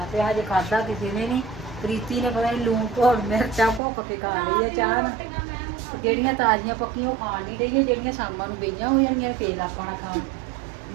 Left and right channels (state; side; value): drops out; left; at 3.8 s